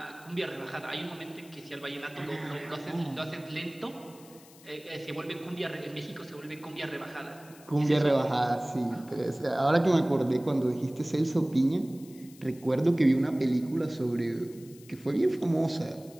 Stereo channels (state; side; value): noise; left; hiss, 23 dB below the sound